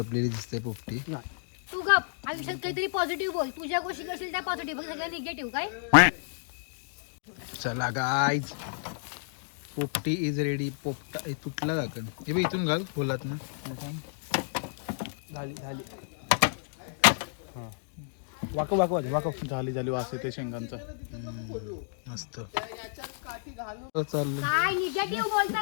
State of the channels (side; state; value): right; silent; digital silence